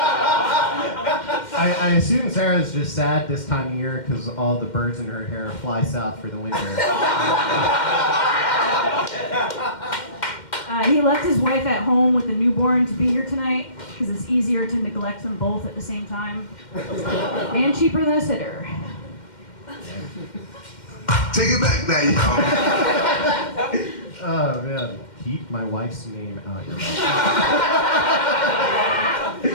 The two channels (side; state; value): right; late; 2.1 ms